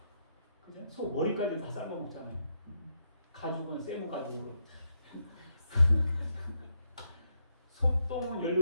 그죠? 소 머리까지 다 삶아먹잖아요. 가죽은 세모 가죽으로. 소똥은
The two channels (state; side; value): inverted; both; correlation -0.79